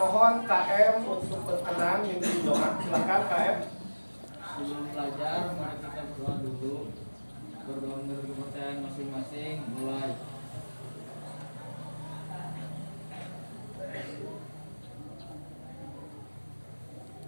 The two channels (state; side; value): inverted; both; correlation -1.00